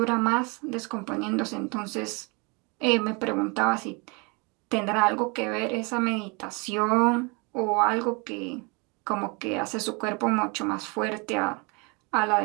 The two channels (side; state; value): left; quieter; 30.1 dB